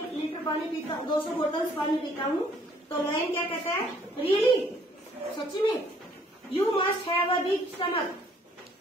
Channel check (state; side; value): normal; both; correlation 0.61